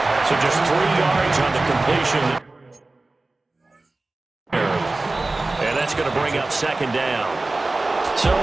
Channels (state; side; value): quieter; left; 3.1 dB